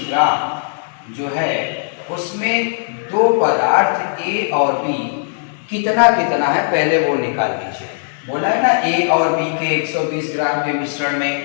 ग्राम जो है उसमें दो पदार्थ ए और बी कितना कितना है पहले वो निकाल लीजिए। बोला है ना ए और बी के 120 ग्राम के मिश्रण में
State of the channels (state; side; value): silent; right; 62 dB below the other